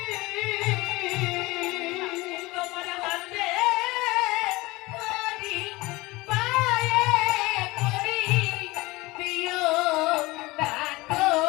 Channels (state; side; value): quieter; right; 21.5 dB